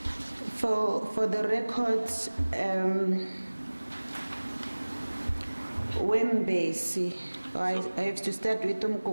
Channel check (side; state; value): both; inverted; correlation -1.00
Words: For the records, Wembesi, I have to start with